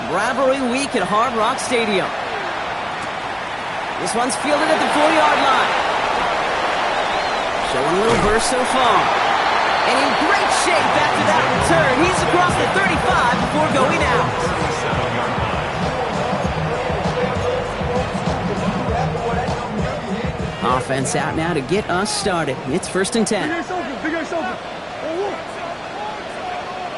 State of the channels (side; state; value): both; identical; correlation 1.00